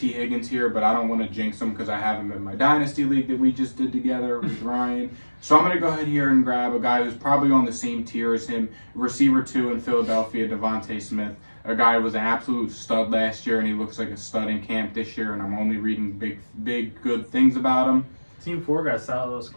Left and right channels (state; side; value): inverted; both; correlation -1.00